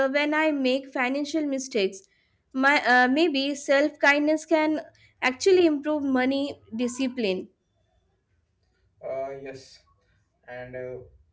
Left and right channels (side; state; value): both; identical; correlation 1.00